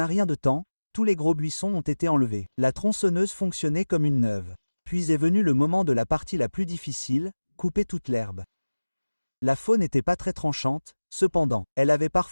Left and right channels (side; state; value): both; inverted; correlation -1.00